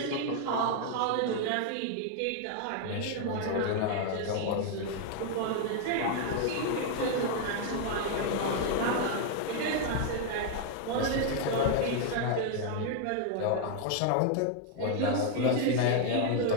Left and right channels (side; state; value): both; different; correlation 0.00